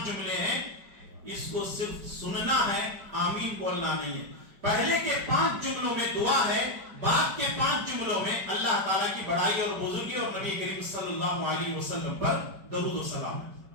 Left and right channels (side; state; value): left; late; 5.0 ms